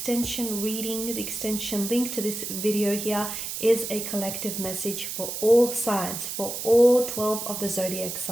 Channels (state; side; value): noise; right; hiss, 5 dB below the sound